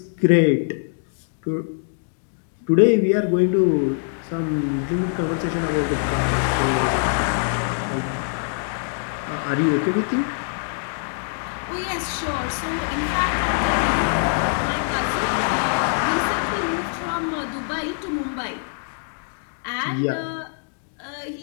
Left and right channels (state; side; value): silent; right; digital silence